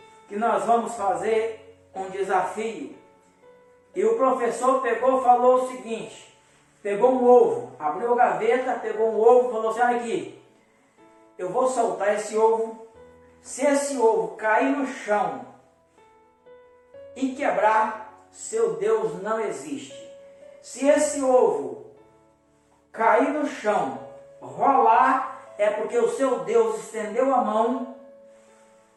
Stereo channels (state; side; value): identical; both; correlation 1.00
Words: que nós vamos fazer um desafio. E o professor falou o seguinte: pegou um ovo, abriu a gaveta, pegou um ovo e falou assim: olha aqui, eu vou soltar esse ovo. Se esse ovo cair no chão e quebrar, seu Deus não existe. Se esse ovo cair no chão, rolar, é porque o seu Deus estendeu a mão